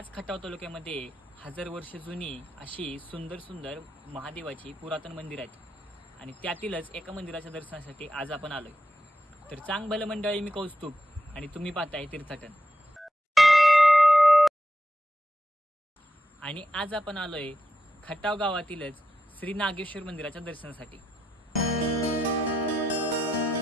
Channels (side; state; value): both; normal; correlation 0.86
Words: खटाव तालुक्यामध्ये 1000 वर्ष जुनी अशी सुंदर सुंदर महादेवाची पुरातन मंदिर आहेत आणि त्यातीलच एका मंदिराच्या दर्शनासाठी आज आपण आलोय। तर चांग भलं मंडळी, मी कौस्तुभ आणि तुम्ही पाहताय तीर्थाटन। आणि आज आपण आलोय खटाव गावातीलच श्री नागेश्वर मंदिराच्या दर्शनासाठी।